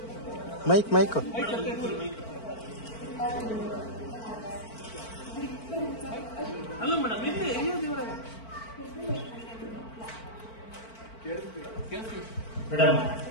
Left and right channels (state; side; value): late; right; 4.5 ms